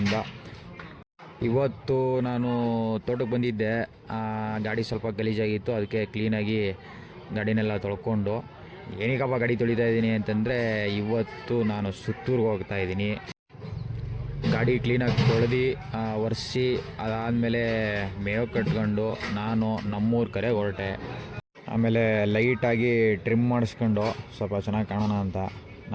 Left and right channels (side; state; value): both; identical; correlation 1.00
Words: ಇವತ್ತು ನಾನು ತೋಟಕ್ಕೆ ಬಂದಿದ್ದೆ. ಗಾಡಿ ಸ್ವಲ್ಪ ಗಲೀಜಾಗಿತ್ತು, ಅದಕ್ಕೆ ಕ್ಲೀನಾಗಿ ಗಾಡಿನೆಲ್ಲ ತೊಳ್ಕೊಂಡು ಏನಕ್ಕಪ್ಪ ಗಾಡಿ ತೊಳಿತಾ ಇದ್ದೀನಿ ಅಂತಂದರೆ, ಇವತ್ತು ನಾನು ಸುತ್ತೂರಿಗೆ ಹೋಗ್ತಾ ಇದ್ದೀನಿ. ಗಾಡಿ ಕ್ಲೀನಾಗಿ ತೊಳೆದು ಒರೆಸಿ ಅದಾದಮೇಲೆ ಮೇವು ಕಟ್ಕೊಂಡು ನಾನು ನಮ್ಮೂರ ಕಡೆ ಹೊರಟೆ. ಆಮೇಲೆ ಲೈಟಾಗಿ ಟ್ರಿಮ್ ಮಾಡಿಸ್ಕೊಂಡು ಸ್ವಲ್ಪ ಚೆನ್ನಾಗಿ ಕಾಣೋಣ ಅಂತ